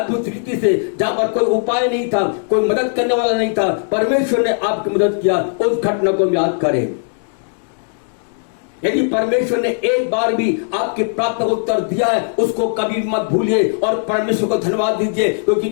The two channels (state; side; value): silent; right; 66 dB below the other